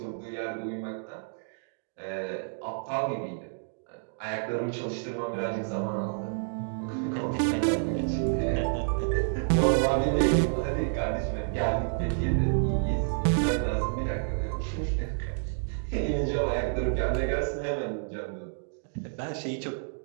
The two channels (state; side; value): silent; left; digital silence